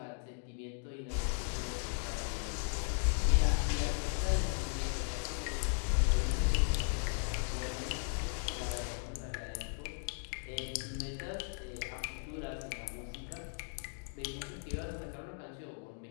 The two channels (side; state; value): right; silent; 53 dB below the other